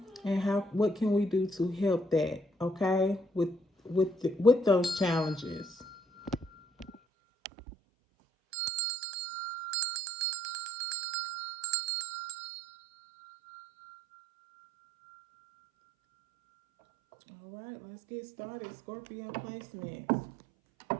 and what can we do to help that, okay? With those challenges. All right, let's get started. Scorpio placements.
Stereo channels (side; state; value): left; drops out; at 7.0 s